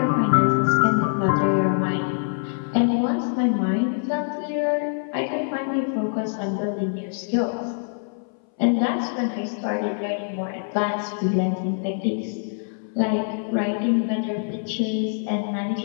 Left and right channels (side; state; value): right; silent; 60 dB below the other